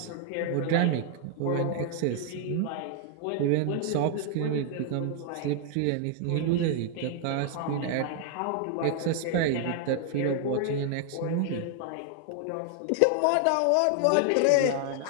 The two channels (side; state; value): both; different; correlation 0.00